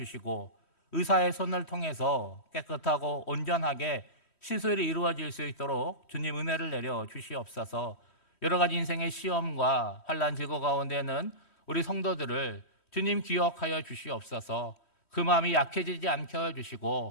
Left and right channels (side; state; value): right; late; 3.1 ms